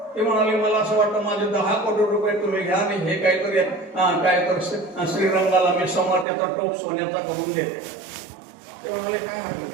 ते म्हणाले मला असं वाटतं माझे 10 कोटी रुपये तुम्ही घ्या आणि हे काहीतरी श्रीरंगाला मी समोर त्याचा टोप सोन्याचा करून देते. ते म्हणाले काय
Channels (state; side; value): drops out; left; at 6.2 s